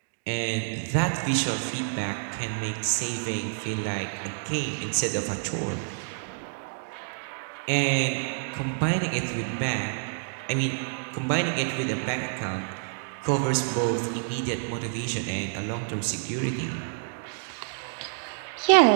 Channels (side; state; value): left; silent; digital silence